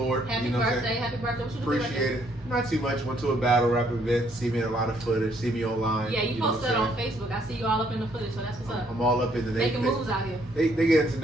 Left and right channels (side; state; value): both; normal; correlation 0.68